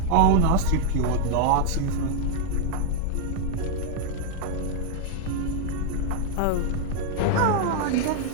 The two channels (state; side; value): different; both; correlation 0.00